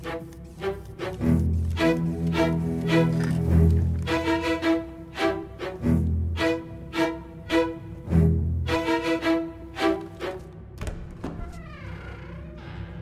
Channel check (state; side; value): identical; both; correlation 1.00